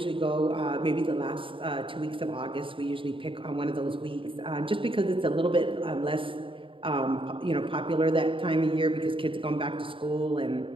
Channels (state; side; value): late; left; 0.25 ms